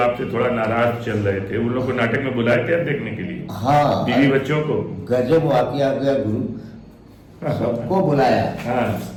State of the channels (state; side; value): identical; both; correlation 1.00